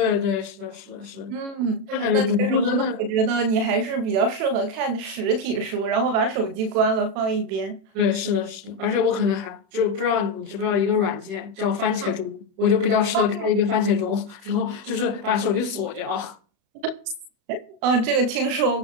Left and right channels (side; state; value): left; late; 36 ms